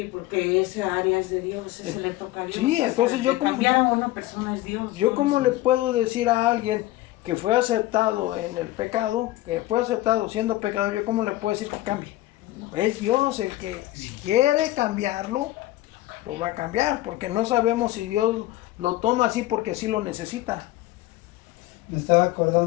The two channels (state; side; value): quieter; right; 16.4 dB